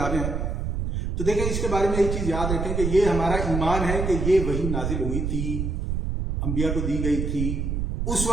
ہیں. تو دیکھیں اس کے بارے میں ایک چیز یاد رکھیں کہ یہ ہمارا ایمان ہے کہ یہ وحی نازل ہوئی تھی، انبیاء کو دی گئی تھی، اس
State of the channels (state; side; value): noise; right; rumble, 1 dB below the sound